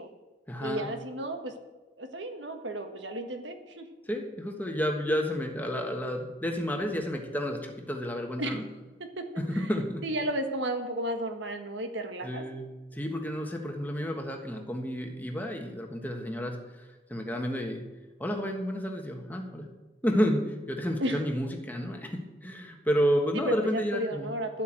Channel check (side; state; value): both; normal; correlation 0.66